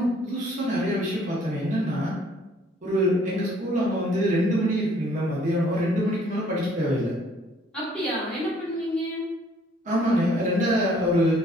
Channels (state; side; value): normal; both; correlation 0.60